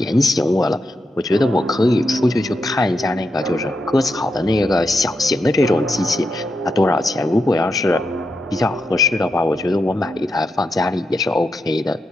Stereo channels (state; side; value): normal; both; correlation 0.85